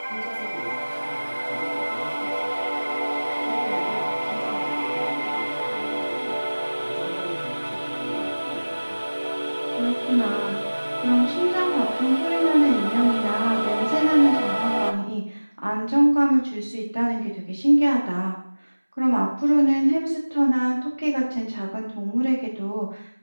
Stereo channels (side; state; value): both; inverted; correlation -1.00